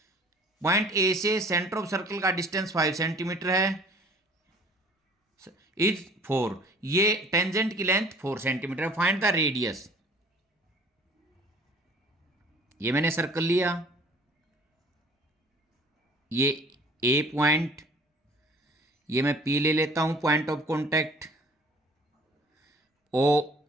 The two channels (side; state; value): both; normal; correlation 0.51